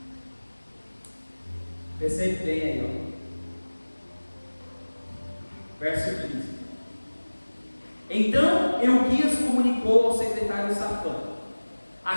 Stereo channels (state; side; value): inverted; both; correlation -1.00